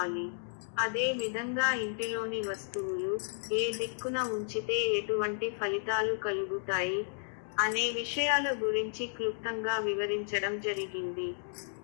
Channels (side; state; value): right; silent; digital silence